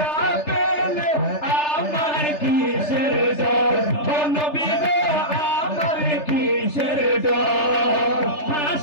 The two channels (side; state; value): right; late; 3.3 ms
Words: আমার কিসের ডর, ও নবী গো আমার কিসের ডর।